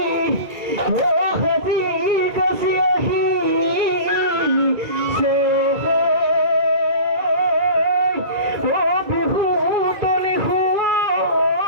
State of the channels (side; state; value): left; late; 2.2 ms